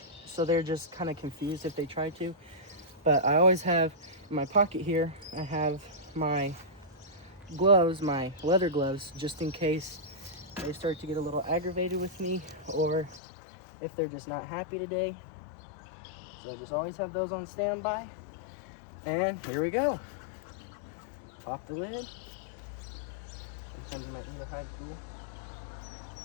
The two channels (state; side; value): drops out; right; at 13.2 s